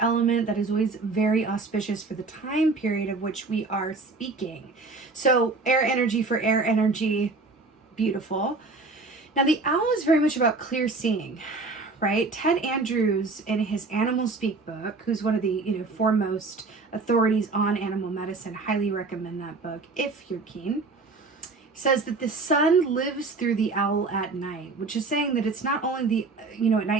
element, that is always very auspicious for the time period of which we are speaking. So air energy for air energy, beautiful. Now the owl is very much about clear seeing, right? Ted Andrews, in his Animal Speak book, who's one of the foremost authorities on animal medicine, highly recommend that book if you're keen, says that the sun lives through the owl at night, which is saying that it's not only at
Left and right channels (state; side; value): quieter; left; 3.8 dB